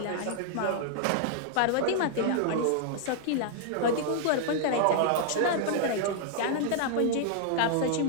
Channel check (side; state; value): both; different; correlation -0.01